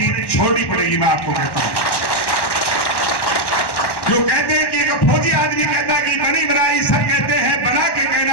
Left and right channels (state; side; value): late; right; 1.1 ms